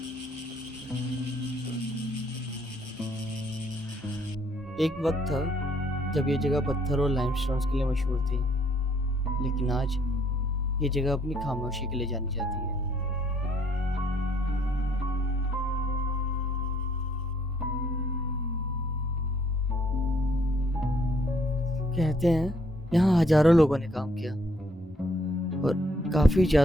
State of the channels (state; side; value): normal; both; correlation 0.67